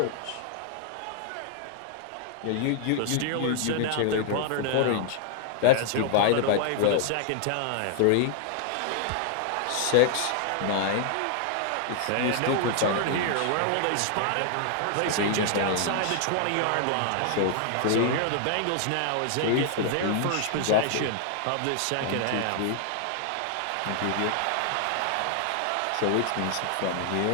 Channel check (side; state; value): both; different; correlation -0.01